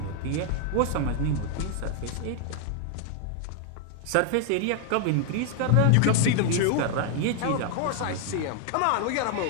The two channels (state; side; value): different; both; correlation 0.00